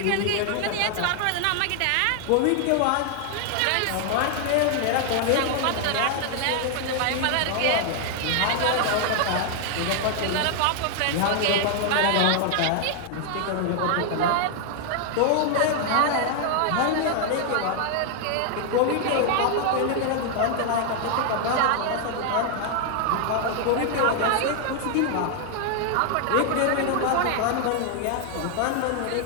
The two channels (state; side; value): different; both; correlation 0.00